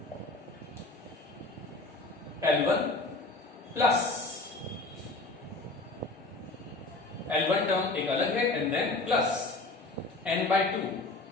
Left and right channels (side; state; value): right; quieter; 3.1 dB